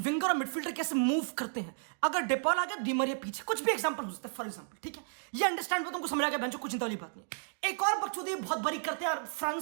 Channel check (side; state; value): left; silent; digital silence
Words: और मिडफील्डर कैसे मूव करते हैं। अगर डेपॉल आ गया, डी मरिया पीछे, कुछ भी एग्जांपल हो सकता है, फॉर एग्जांपल, ठीक है, ये अंडरस्टैंड हो, तुमको समझ आ गया बेंचो, कुछ चिंता वाली बात नहीं। एक और बकचोदी बहुत बड़ी करते हैं